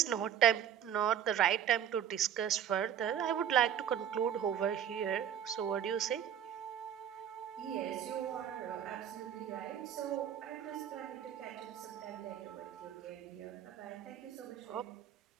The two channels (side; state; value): left; quieter; 9.4 dB